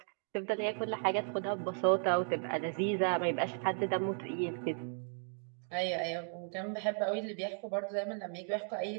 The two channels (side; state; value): left; silent; 54 dB below the other